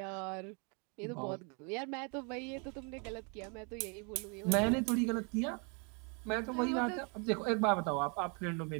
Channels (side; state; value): left; quieter; 35.1 dB